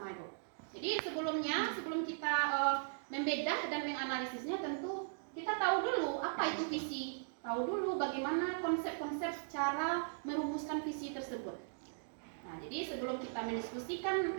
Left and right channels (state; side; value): silent; left; digital silence